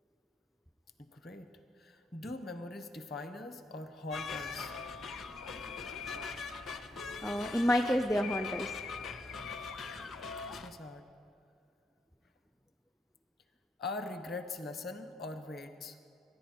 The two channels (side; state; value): both; normal; correlation 0.77